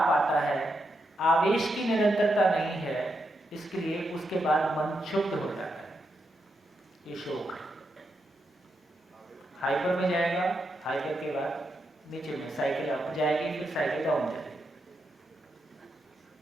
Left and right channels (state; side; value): normal; both; correlation 0.83